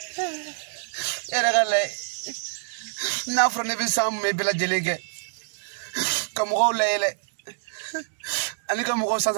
Era gale. Na frone be sam me bela jelege. Kamugo lele. Ani kamugo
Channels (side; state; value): left; silent; digital silence